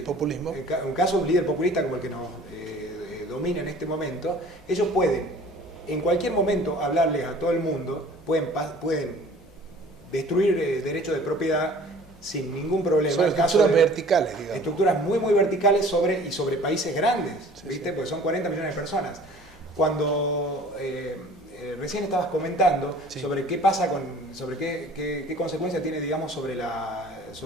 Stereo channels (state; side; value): normal; both; correlation 0.48